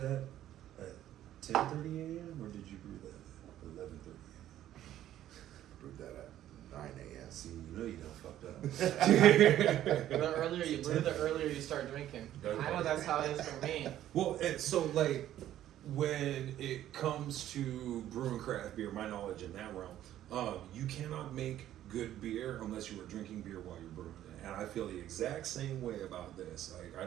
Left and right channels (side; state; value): left; quieter; 12.4 dB